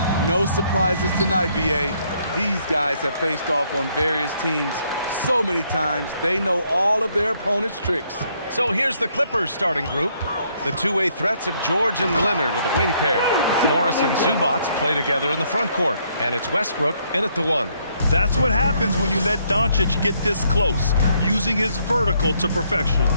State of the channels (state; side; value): inverted; both; correlation -0.70